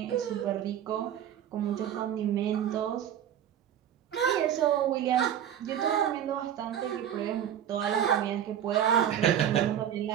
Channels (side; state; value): left; quieter; 10.0 dB